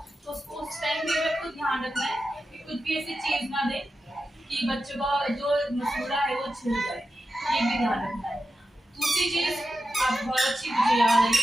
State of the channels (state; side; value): normal; both; correlation 0.90